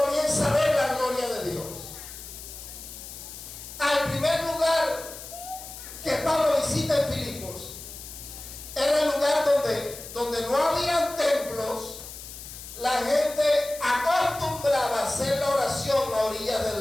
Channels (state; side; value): noise; left; hiss, 13 dB below the sound